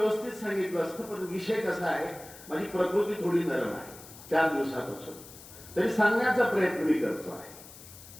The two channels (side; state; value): left; noise; hiss, 18 dB below the sound